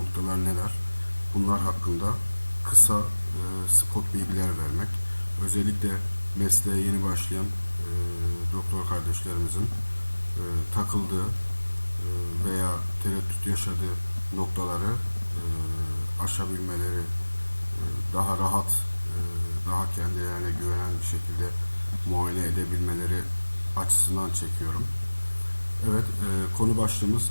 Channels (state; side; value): inverted; both; correlation -1.00